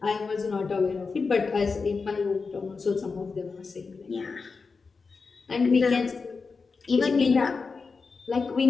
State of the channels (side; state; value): right; quieter; 4.7 dB